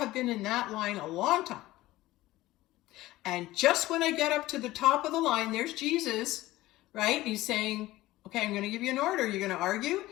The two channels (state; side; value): quieter; right; 17.2 dB